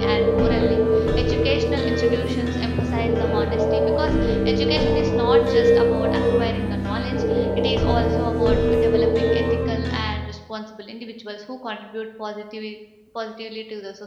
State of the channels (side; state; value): both; identical; correlation 1.00